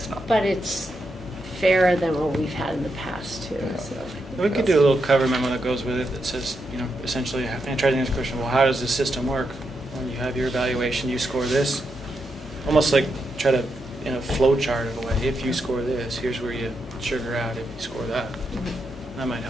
not. But it's fairer than what we've had in the past, too. So. We could do a little cover memo that goes with it that says, essentially, and try to answer the question, well, how does the system work? When you have your evaluation, you score this. Almost like try to, in a flow chart of a way, if you score this, here's where you sugar out if you score that. That might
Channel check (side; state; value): both; normal; correlation 0.84